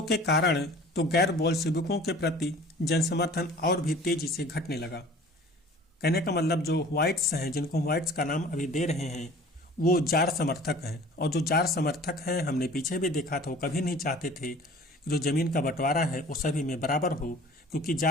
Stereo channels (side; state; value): both; normal; correlation 0.46